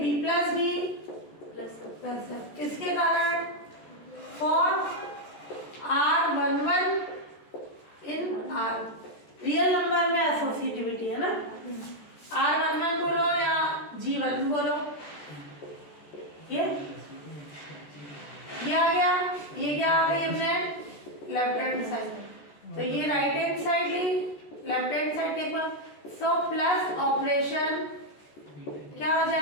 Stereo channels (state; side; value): late; right; 14 ms